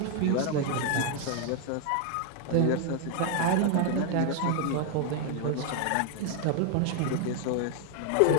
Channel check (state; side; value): different; both; correlation 0.00